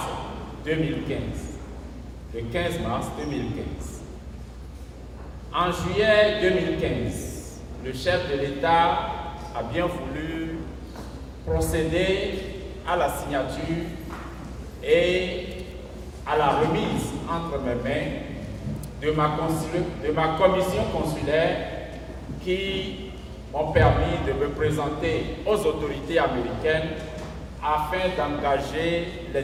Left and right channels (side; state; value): both; identical; correlation 1.00